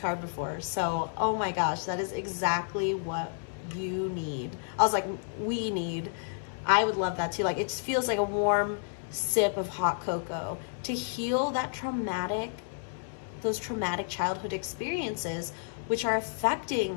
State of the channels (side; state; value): right; silent; digital silence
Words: before. So, oh my gosh, that is exactly what you need. I was like, we need. I would love that too. Like, it just feels like a warm sip of hot cocoa to heal those traumatic childhood experiences which are